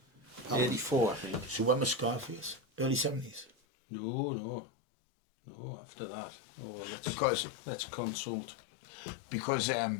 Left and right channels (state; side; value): drops out; right; at 3.5 s